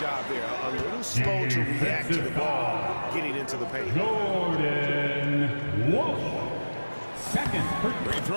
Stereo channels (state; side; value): inverted; both; correlation -1.00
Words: there. A little slow to react to the ball getting into the paint. Jordan Walsh. Second. Free